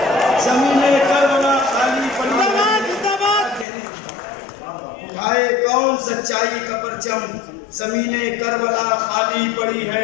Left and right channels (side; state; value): right; drops out; at 3.7 s